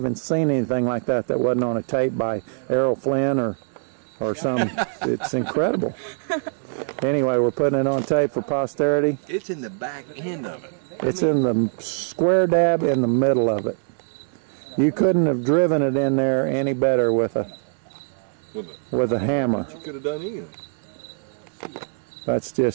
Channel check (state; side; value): silent; left; digital silence